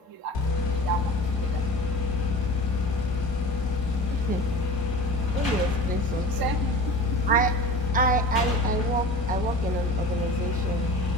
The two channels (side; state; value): both; normal; correlation 0.36